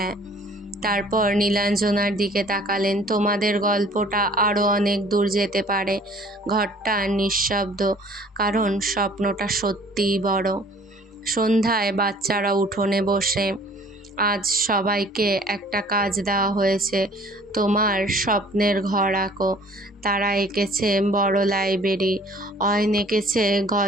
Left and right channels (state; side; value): normal; both; correlation 0.53